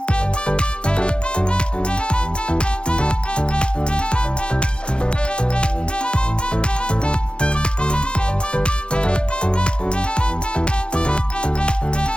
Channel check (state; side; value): late; right; 0.053 ms